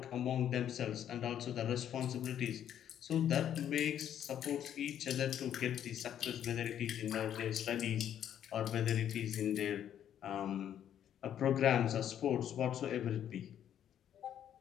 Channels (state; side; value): quieter; right; 10.1 dB